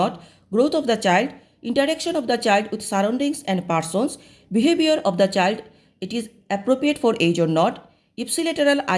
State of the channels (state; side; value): identical; both; correlation 1.00